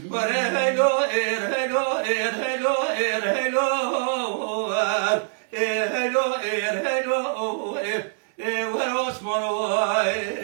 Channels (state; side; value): silent; left; 62 dB below the other